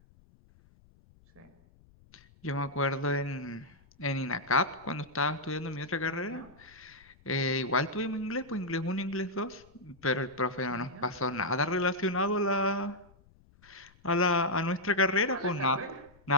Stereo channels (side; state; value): left; noise; rumble, 28 dB below the sound